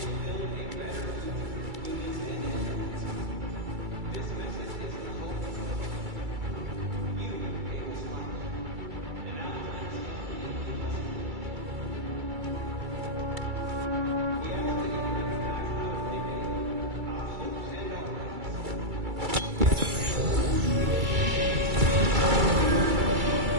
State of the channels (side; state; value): left; late; 2.3 ms